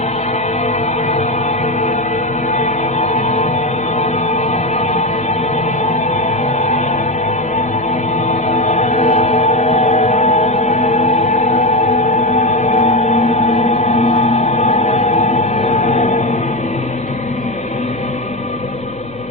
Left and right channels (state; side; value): noise; right; hum, 22 dB below the sound